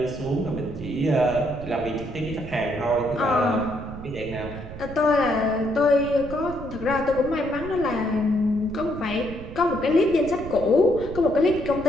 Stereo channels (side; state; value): right; noise; rumble, 12 dB below the sound